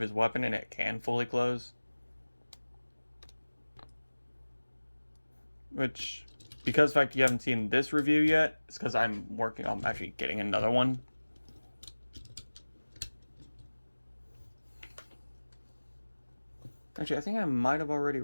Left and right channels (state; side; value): inverted; both; correlation -1.00